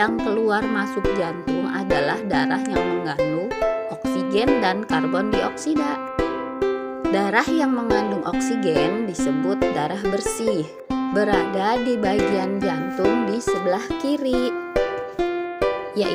keluar masuk jantung adalah darah yang mengandung oksigen dan karbon dioksida. Darah yang mengandung oksigen disebut darah bersih, berada di bagian jantung di sebelah kiri,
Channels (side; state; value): both; identical; correlation 1.00